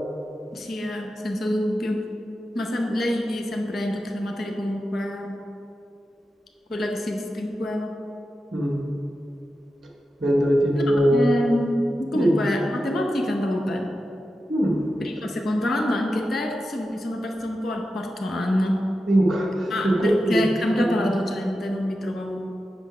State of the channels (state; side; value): normal; both; correlation 0.91